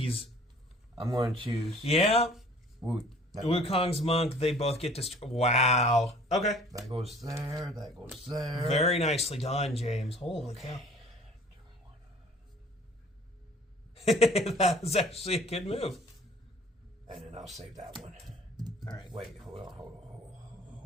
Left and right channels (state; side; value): normal; both; correlation 0.51